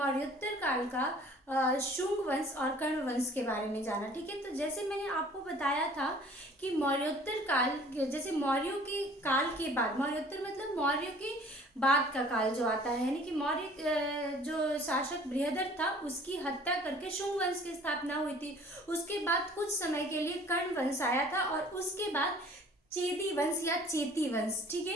काल का शुंग वंश और कर्ण वंश के बारे में जाना। ठीक है, तो जैसे मैंने आपको बताया था कि मौर्योत्तर काल, जैसे मौर्यों के काल के बाद, मौर्योत्तर मतलब मौर्य के बाद का काल जो आता है, यानी कि मौर्य जो शासक बृहदर था उसकी हत्या करके शुंग वंश की स्थापना हुई थी। उसके बाद कुछ समय के लिए कर्ण वंश आया था और उसके बाद चेदी वंश या चेती वंश। ठीक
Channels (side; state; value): both; normal; correlation 0.51